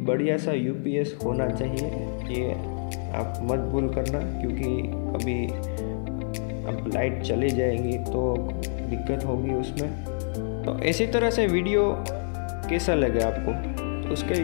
बढ़िया सा UPS होना चाहिए, ये आप मत भूल करना, क्योंकि अभी अब लाइट चली जाएगी तो दिक्कत होगी उसमें। तो इसी तरह से वीडियो कैसा लगे आपको, तो उसके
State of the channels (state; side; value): silent; right; 57 dB below the other